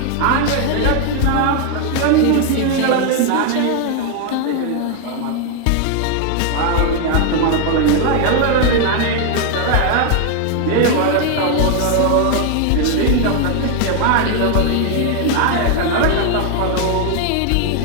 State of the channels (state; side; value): different; both; correlation 0.01